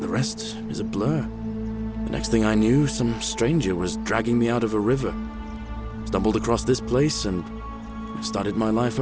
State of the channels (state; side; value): identical; both; correlation 1.00